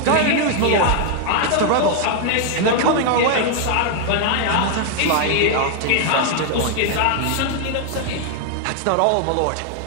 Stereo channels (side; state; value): both; different; correlation 0.00